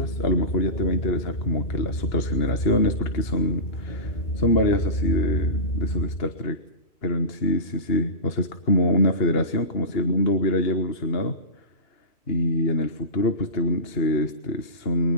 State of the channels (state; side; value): late; right; 2.8 ms